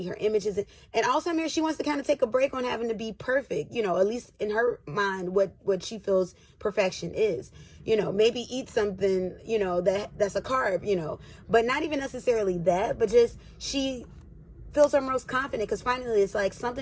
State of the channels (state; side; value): identical; both; correlation 1.00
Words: Her image isn't, and also I'm here, she wants to kind of take a break on having to be perfect, you know, at least in her mind, what she feels perfection is, you know, maybe eat something, you know, that's a carb, you know, but not even necessarily that, but just she feels her most confident because finally it's like